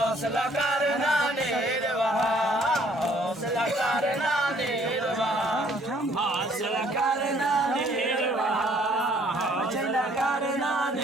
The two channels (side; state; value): both; normal; correlation 0.61